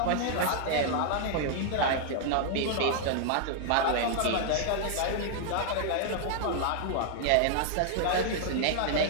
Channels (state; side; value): different; both; correlation -0.01